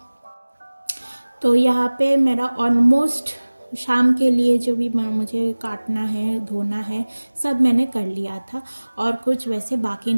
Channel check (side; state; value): both; inverted; correlation -1.00